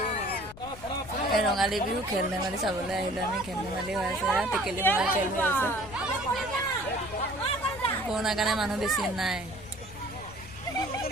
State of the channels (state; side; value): noise; left; rumble, 16 dB below the sound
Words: এই ৰঙালী বিহু খেল ধেমালি চাবলৈ আহিলোঁ আমি। খেল ধেমালি হৈ আছে, টেকেলি ভঙা খেল হৈ আছে। কৰোণাৰ কাৰণে মানুহ বেছি নাই।